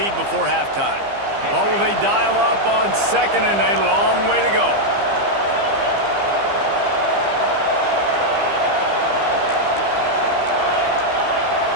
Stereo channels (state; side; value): late; left; 15 ms